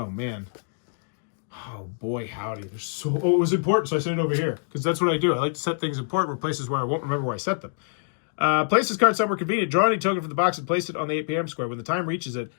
man. Oh, boy, howdy. It was important, so I set it over here. Because that's what I do. I like to set things important for places where I won't remember where I set them. Place this card somewhere convenient. Draw any token from the box and place it on the 8 p.m. square when the time reaches it.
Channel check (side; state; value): right; silent; digital silence